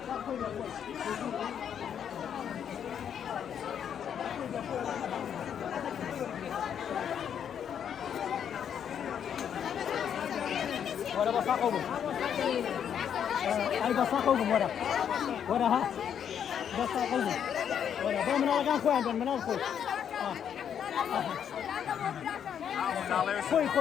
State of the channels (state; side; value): quieter; right; 8.6 dB